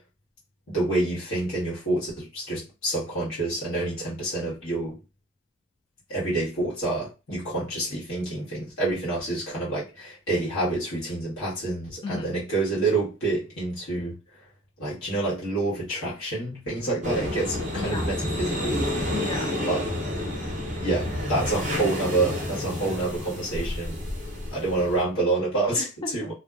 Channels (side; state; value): both; normal; correlation 0.39